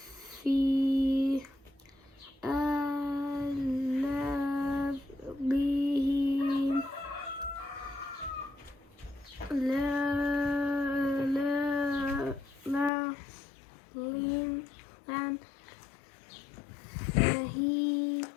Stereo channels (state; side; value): drops out; right; at 12.9 s